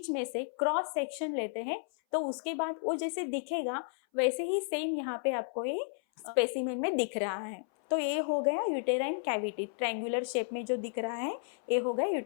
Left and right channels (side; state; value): right; silent; 56 dB below the other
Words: में से क्रॉस सेक्शन लेते हैं तो उसके बाद वो जैसे दिखेगा वैसे ही सेम यहाँ पे आपको ये स्पेसिमेन में दिख रहा है। तो ये हो गया यूटेराइन कैविटी, ट्रायंगुलर शेप में जो दिख रहा है ये हो गया